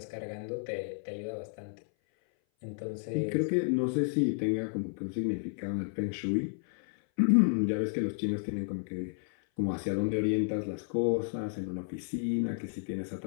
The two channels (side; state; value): right; silent; 56 dB below the other